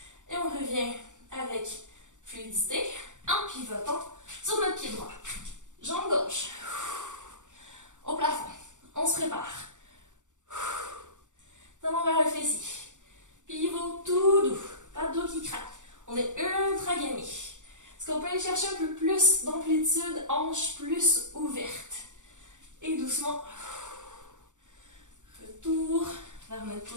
Et on revient avec fluidité en pivotant sur notre pied droit. Jambe gauche. Au plafond. On se prépare. Talon vers le fessier. Pivot tout doux. Pas de dos qui craque. On est ultra gainé. Est-ce qu'on peut aller chercher un peu plus d'amplitude, hanche plus ouverte? Et doucement, retour vers notre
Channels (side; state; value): left; late; 0.86 ms